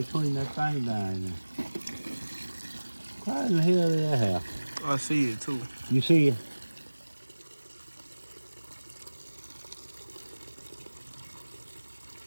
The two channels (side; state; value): both; inverted; correlation -1.00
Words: that thing down there. Why in the hell did that happen? I see it too. You see it?